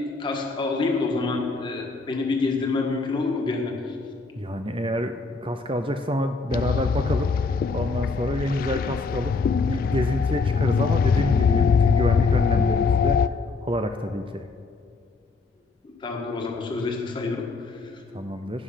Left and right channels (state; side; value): quieter; right; 3.9 dB